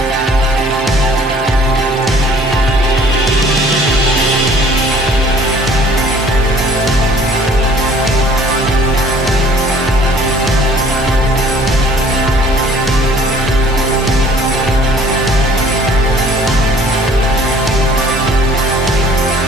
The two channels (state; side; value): normal; both; correlation 0.54